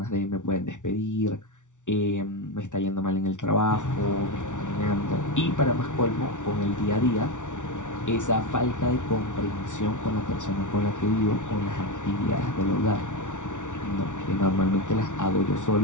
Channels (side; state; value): right; late; 0.86 ms